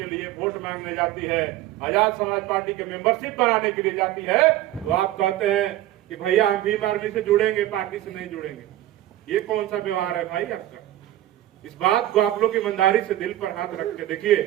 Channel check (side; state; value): left; quieter; 14.3 dB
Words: लिए वोट मांगने जाती है, आजाद समाज पार्टी के मेंबरशिप बनाने के लिए जाती है, तो आप कहते हैं कि भैया हम भीम आर्मी से जुड़ेंगे, पार्टी से नहीं जुड़ेंगे। ये कौन सा व्यवहार है भाई आपका? इस बात को आप लोग ईमानदारी से दिल पर हाथ रख के देखिए